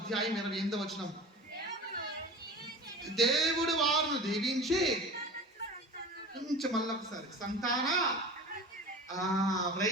28వ వచనం. దేవుడు వారిని దీవించి మళ్ళీ ఒకసారి సంతాన,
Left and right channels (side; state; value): both; normal; correlation 0.35